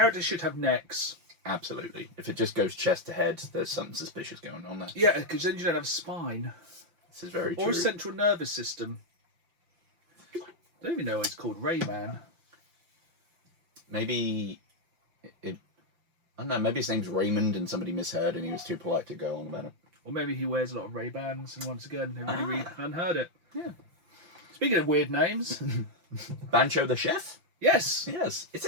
should have necks. Absolutely. If it just goes chest to head, there's something suspicious going on there. Yeah, because then you don't have a spine. This is very true. Or a central nervous system. don't even know why it's called Rayman. Maybe I don't know. Maybe his name's Raymond, and somebody misheard, and he was too polite to go on about it. Or maybe he wears a lot of Ray-Bans, and once again, they really unheard it. Yeah. Speaking of weird names, Bancho the Chef? yes, Yes. Is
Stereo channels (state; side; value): late; left; 5.8 ms